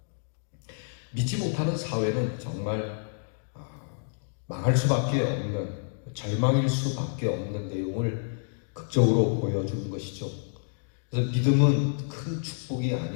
믿지 못하는 사회는 정말 망할 수밖에 없는, 절망일 수밖에 없는 내용을 극적으로 보여주는 것이죠. 그래서 믿음은 큰 축복이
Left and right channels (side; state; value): right; silent; digital silence